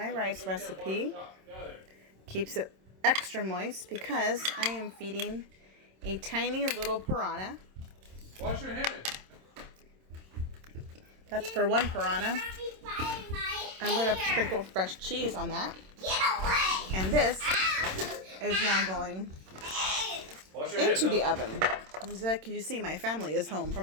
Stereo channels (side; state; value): left; late; 26 ms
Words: rice recipe. Stop. Got it. Keeps it extra moist because I am feeding a tiny little piranha. Wash your hands. That's for one piranha. Don't be biting my I'm going to hair. sprinkle fresh cheese on that. Get away. And this Ow. is now going Wash your hands. into the huh? oven. As you see, my family is home